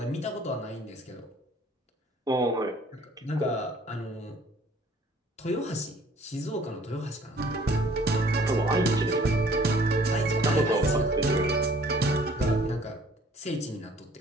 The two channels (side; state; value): both; normal; correlation 0.56